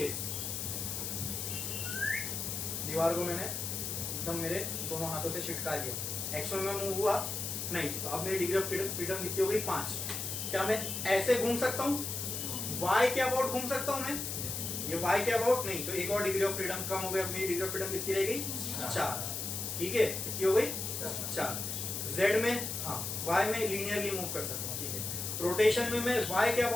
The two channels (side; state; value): left; noise; hiss, 3 dB below the sound